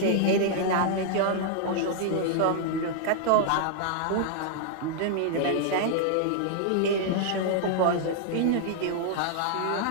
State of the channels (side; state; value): both; different; correlation 0.00